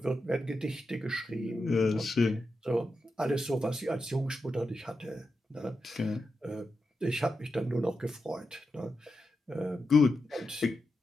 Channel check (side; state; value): both; normal; correlation 0.88